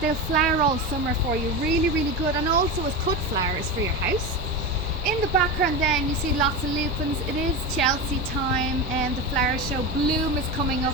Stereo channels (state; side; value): normal; both; correlation 0.21